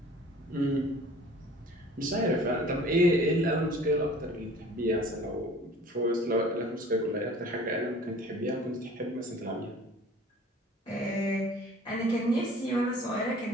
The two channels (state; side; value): normal; both; correlation 0.48